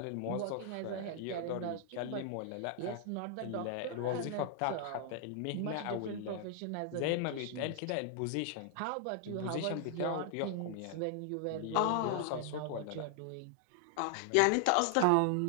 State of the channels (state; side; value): different; both; correlation 0.00